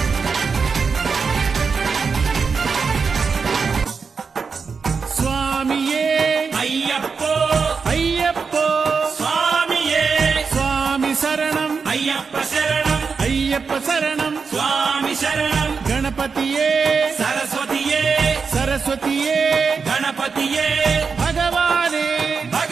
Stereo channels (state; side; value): quieter; left; 5.3 dB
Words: స్వామియే అయ్యప్పో అయ్యప్పో స్వామియే స్వామి శరణం అయ్యప్ప శరణం అయ్యప్ప శరణం స్వామి శరణం గణపతియే సరస్వతియే సరస్వతియే గణపతియే భగవానే